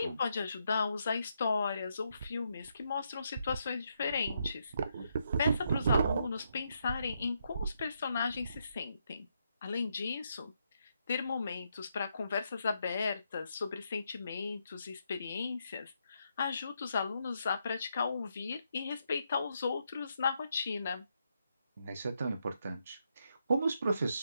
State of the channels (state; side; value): inverted; both; correlation -0.79